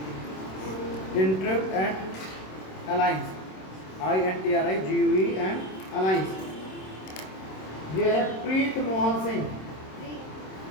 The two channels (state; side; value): late; right; 26 ms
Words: intrigue and alliance, I-N-T-R-I-G-U-E and alliance. ये है Preet Mohan Singh,